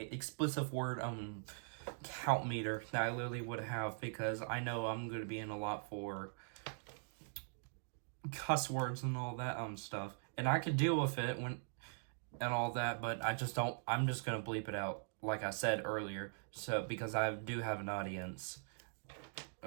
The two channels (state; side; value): silent; left; digital silence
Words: word count meter that I literally would have, because I know I'm going to be in a lot for cuss words and all that stuff, and I could deal with it when and all that, but I just don't. I'm just gonna bleep it out, like I said earlier, so because I do have an audience